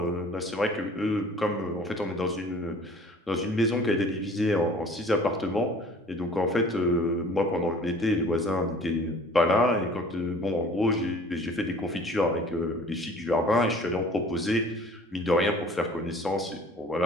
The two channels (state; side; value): normal; both; correlation 0.49